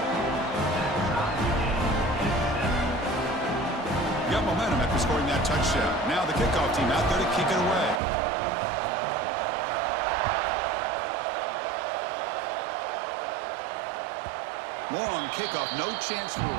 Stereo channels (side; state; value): left; drops out; at 8.0 s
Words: Got momentum after scoring that touchdown. Now the kickoff team out there to kick it away. Long kickoff, no chance for a